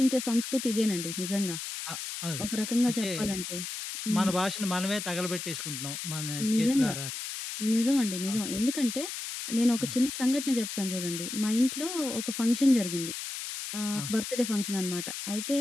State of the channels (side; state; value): left; noise; hiss, 6 dB below the sound